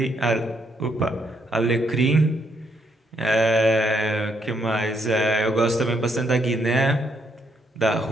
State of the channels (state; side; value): normal; both; correlation 0.74